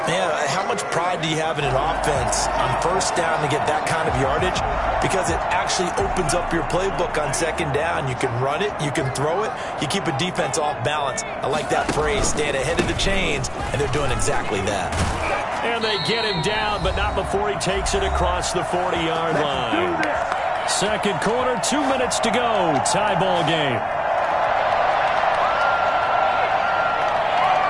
Yeah, how much pride do you have in an offense on 1st down to get that kind of yardage? Because it actually opens up your playbook on 2nd down. You can run it, you can throw it, you keep a defense off balance. I like that phrase, staying ahead of the chains, and they're doing exactly that. And they get him down, but not before he takes it across the 40-yard line. 2nd quarter, 2 minutes to go. Tie ball game.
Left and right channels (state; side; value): identical; both; correlation 1.00